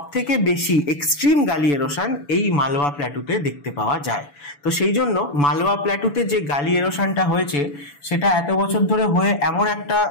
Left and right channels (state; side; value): late; right; 7.0 ms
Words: থেকে বেশি এক্সট্রিম গালি এরোশন এই মালওয়া প্ল্যাটুতে দেখতে পাওয়া যায়। তো সেই জন্য মালওয়া প্ল্যাটুতে যে গালি এরোশনটা হয়েছে সেটা এত বছর ধরে হয়ে এমন একটা